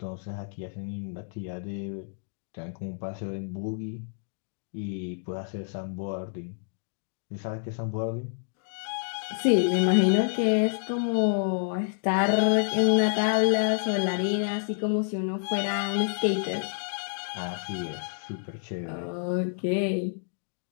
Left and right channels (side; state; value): right; silent; digital silence